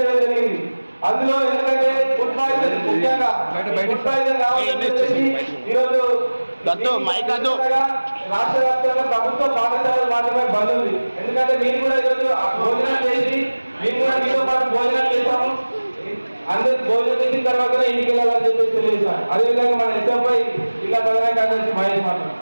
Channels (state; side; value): inverted; both; correlation -1.00